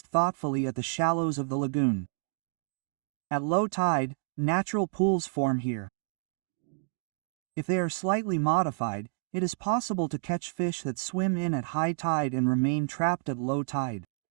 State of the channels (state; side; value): silent; left; digital silence